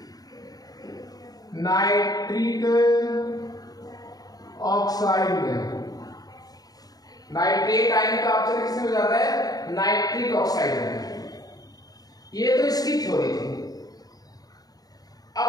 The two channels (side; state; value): right; late; 0.18 ms